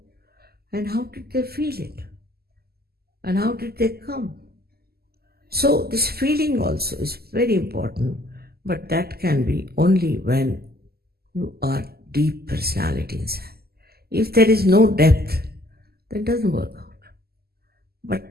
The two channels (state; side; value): late; left; 0.46 ms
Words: And how did they feel it? And how did they come? So this feeling also is very important, but that can be only when you are deep personality inside. If there is no depth, that doesn't work out.